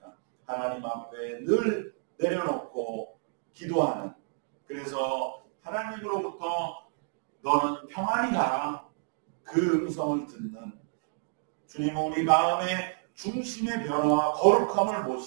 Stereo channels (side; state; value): left; silent; digital silence